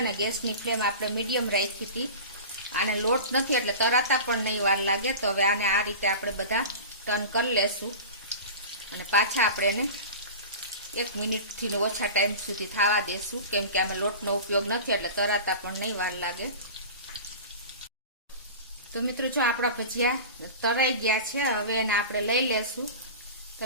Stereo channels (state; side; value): inverted; both; correlation -0.33